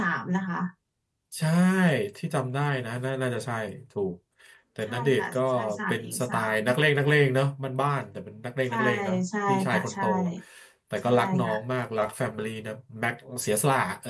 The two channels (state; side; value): identical; both; correlation 1.00